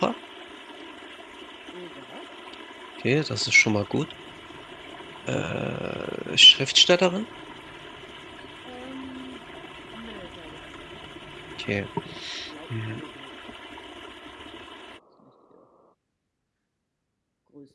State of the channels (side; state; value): both; identical; correlation 1.00